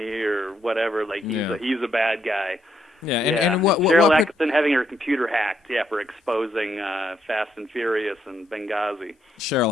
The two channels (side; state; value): both; normal; correlation 0.75